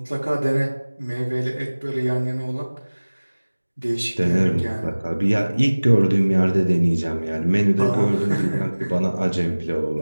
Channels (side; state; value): both; inverted; correlation -1.00